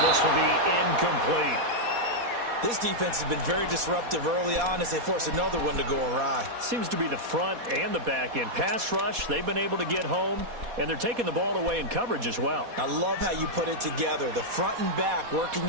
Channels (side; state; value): left; late; 4.2 ms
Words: this will be incomplete. This defense has been very disruptive early on as they force another one to go awry. Seems to be the front and the back end. Pass rush, they've been able to get home, and they're taking the ball away in coverage as well. I love how you put it together. The front and back working